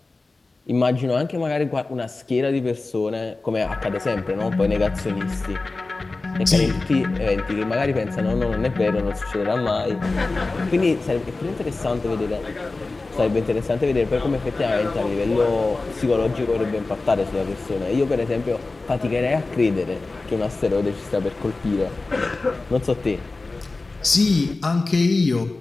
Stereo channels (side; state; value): right; quieter; 3.4 dB